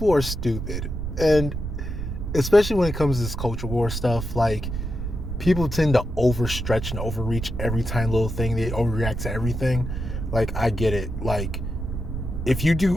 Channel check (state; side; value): noise; right; rumble, 5 dB below the sound